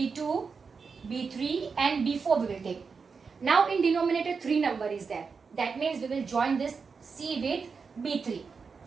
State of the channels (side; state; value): left; quieter; 5.2 dB